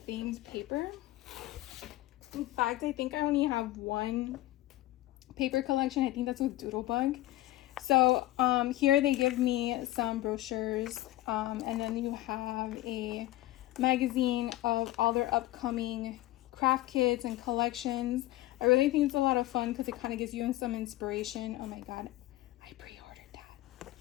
themed paper. In fact, I think I only have one paper collection. I think that's with Doodlebug. So here they give me some brochures, and then you have a magazine of all their upcoming craft kits and collections. I really think it's a lot of fun because it kind of gives you some inspiration. Oh my god, I pre-ordered that.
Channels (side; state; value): right; quieter; 16.6 dB